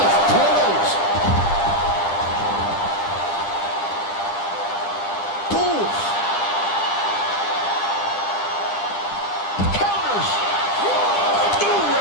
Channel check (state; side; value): late; right; 10 ms